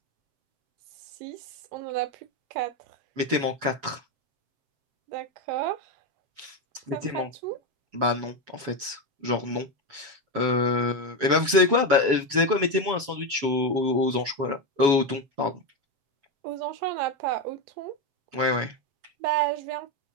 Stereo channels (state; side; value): late; left; 7.1 ms